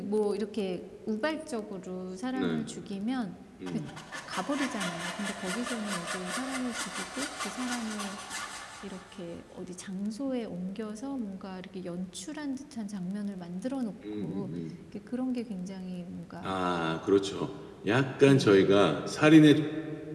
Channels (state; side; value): identical; both; correlation 1.00